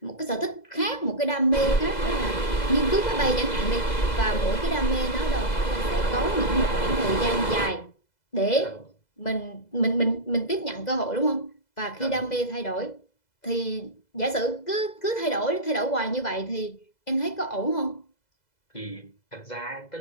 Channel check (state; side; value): late; right; 2.0 ms